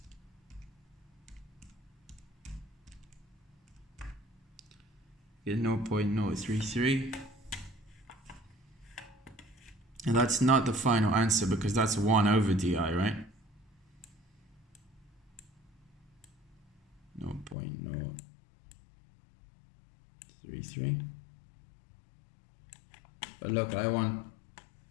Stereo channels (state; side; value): drops out; right; at 17.6 s